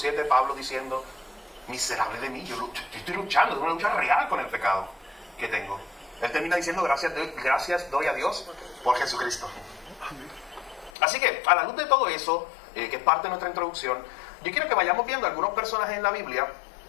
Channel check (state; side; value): drops out; right; at 10.9 s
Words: Pablo diciendo: miserable de mí, yo estoy luchando, es una lucha real con el pecado que tengo? Él termina diciendo: gracias doy a Dios por Jesucristo. Así que, a la luz de todo eso, que es parte de nuestra introducción, yo quiero que vayamos viendo algunos personajes en la Biblia,